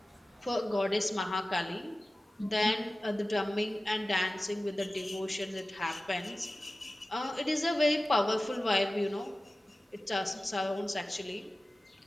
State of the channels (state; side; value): normal; both; correlation 0.96